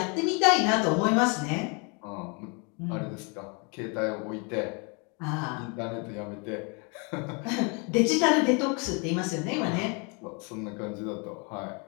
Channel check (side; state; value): right; quieter; 33.5 dB